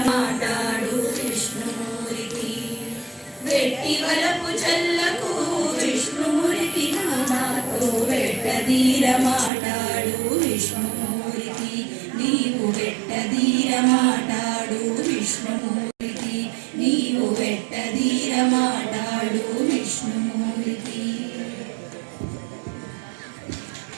మాటాడు విష్ణుమూర్తి వెట్టి వరపు చల్లకు విష్ణుమూర్తి నాతో వెట్టదీర మాటాడు విష్ణుమూర్తి నీవు వెట్టదీర మాటాడు విష్ణుమూర్తి నీవు వెట్టదీర మాటాడు విష్ణుమూర్తి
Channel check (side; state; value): left; drops out; at 9.5 s